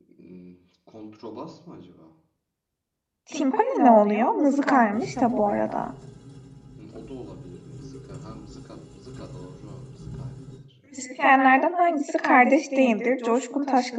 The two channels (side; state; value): both; identical; correlation 1.00